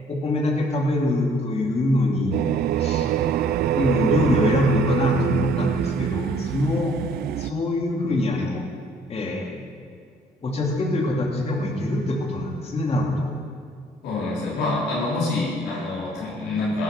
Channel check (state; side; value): normal; both; correlation 0.59